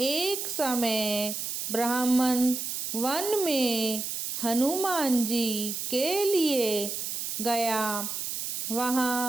समय ब्राह्मण वन में हनुमान जी के लिए गया।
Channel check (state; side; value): noise; right; hiss, 4 dB below the sound